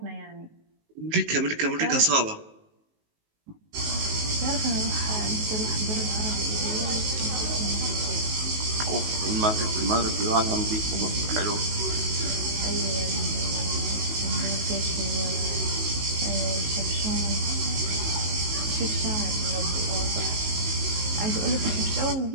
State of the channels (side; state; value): left; late; 19 ms